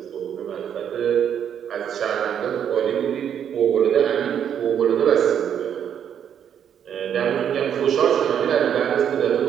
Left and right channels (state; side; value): quieter; left; 8.8 dB